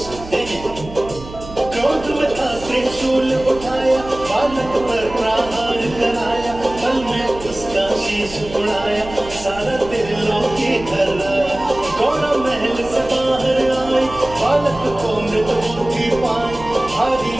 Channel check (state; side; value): noise; right; hum, 15 dB below the sound